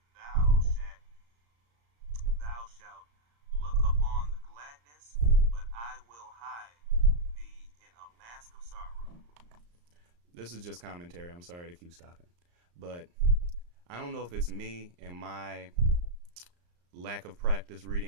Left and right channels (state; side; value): late; left; 34 ms